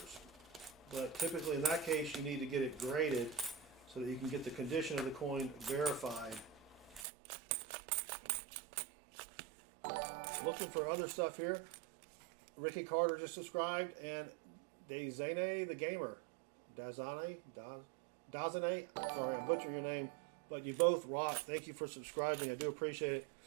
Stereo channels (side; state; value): left; drops out; at 7.1 s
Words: But typically in that case, you need to get it graded so that you can get the condition of the coin verified. Looking for other stuff here. Ricky Carter just subscribed, and Dazane the Gamer. Dazane? Sorry, I butchered your name, but you both rock. Thank you for subscribing. I do appreciate it.